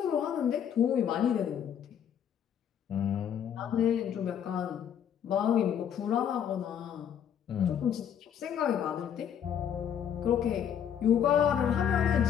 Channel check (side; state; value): right; quieter; 8.8 dB